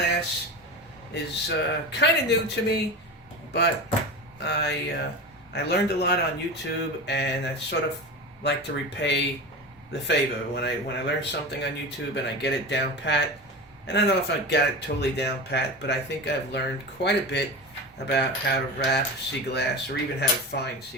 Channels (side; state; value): both; normal; correlation 0.27